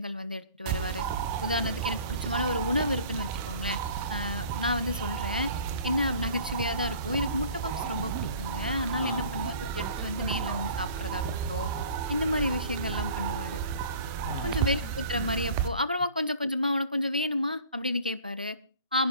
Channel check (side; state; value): both; inverted; correlation -0.47